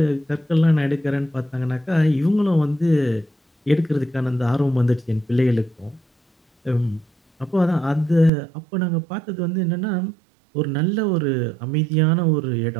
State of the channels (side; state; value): left; drops out; at 8.3 s